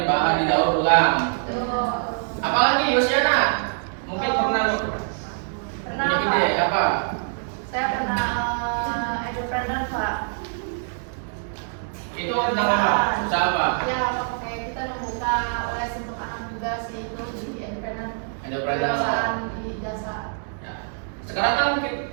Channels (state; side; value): silent; left; digital silence